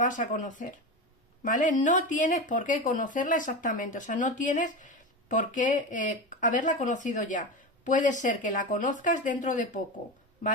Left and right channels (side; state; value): both; normal; correlation 0.22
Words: a conocer, ¿vale? No tienes por qué conocerla exactamente, o sea, no tienes por qué haberla conocido ya. Puede ser que la conozcas dentro de poco,